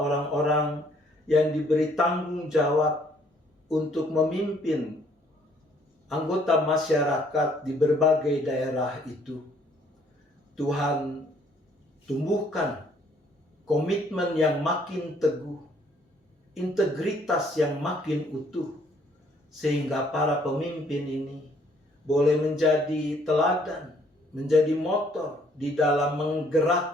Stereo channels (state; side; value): normal; both; correlation 0.63